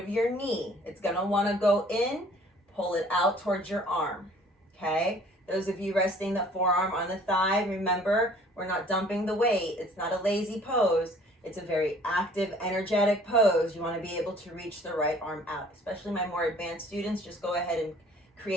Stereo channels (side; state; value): both; normal; correlation 0.54